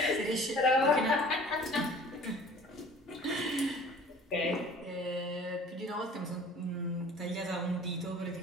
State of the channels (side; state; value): both; normal; correlation 0.48